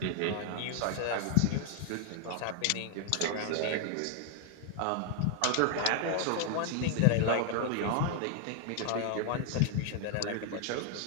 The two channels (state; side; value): different; both; correlation 0.00